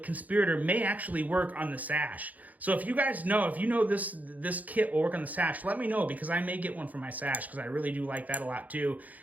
may actually work on the sash. So if you guys know, this kit will work on the sash, let me know, because I may get one for my sash, because I really do like that a lot too.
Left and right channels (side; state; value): left; late; 0.078 ms